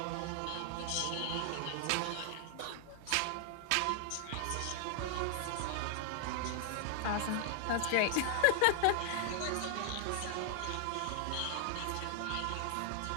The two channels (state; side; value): different; both; correlation 0.00